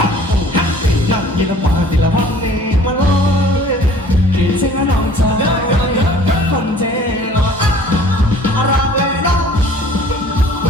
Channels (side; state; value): both; normal; correlation 0.51